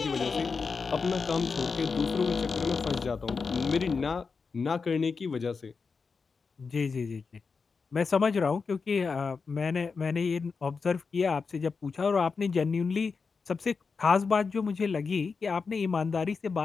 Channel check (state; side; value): quieter; right; 5.0 dB